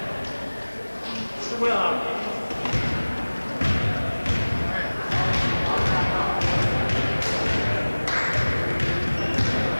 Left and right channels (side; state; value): both; inverted; correlation -1.00